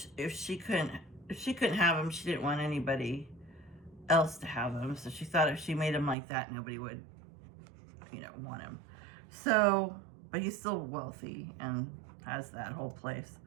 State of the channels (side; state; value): left; drops out; at 6.2 s